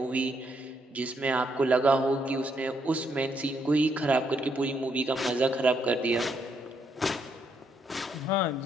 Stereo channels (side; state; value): both; normal; correlation 0.75